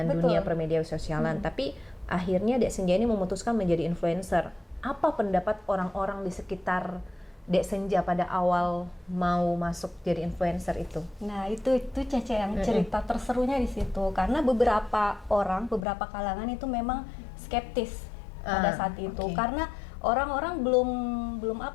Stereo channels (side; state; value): right; drops out; at 15.9 s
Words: Betul. dunia permedia sosialan. Tapi akhirnya Dek Senja ini memutuskan menjadi influencer. Apa pendapat orang-orang di sekitar Dek Senja pada awal mau masuk jadi influencer itu? Nah, itu Cece yang cerita terserunya di situ, karena beberapa beberapa kalangan itu memang skeptis pada saat itu, oke. karena orang-orang